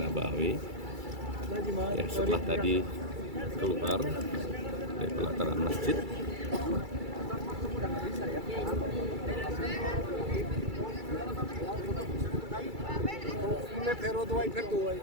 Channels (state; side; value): late; left; 2.3 ms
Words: Ya, setelah tadi keluar dari pelataran masjid.